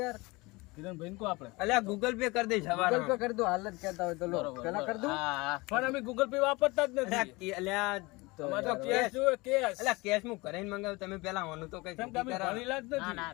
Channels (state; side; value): quieter; right; 23.8 dB